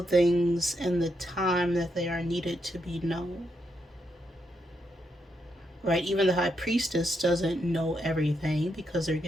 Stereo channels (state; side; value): normal; both; correlation 0.80